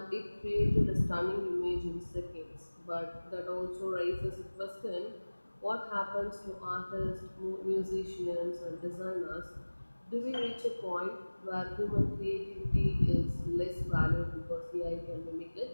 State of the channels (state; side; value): inverted; both; correlation -1.00